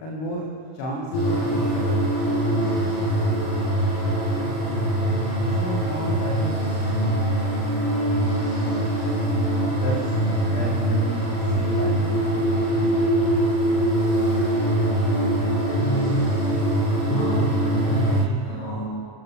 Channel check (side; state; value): right; late; 38 ms